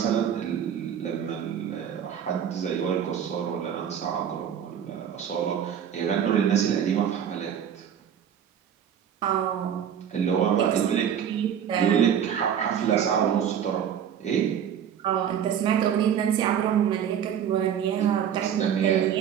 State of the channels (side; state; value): left; quieter; 8.8 dB